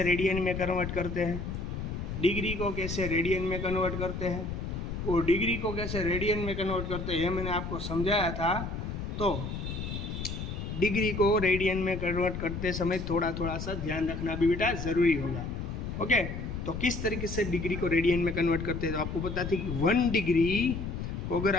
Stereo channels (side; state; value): left; noise; rumble, 5 dB below the sound